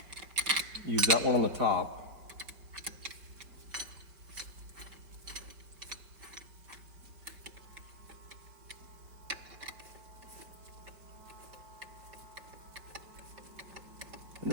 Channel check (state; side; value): late; left; 4.9 ms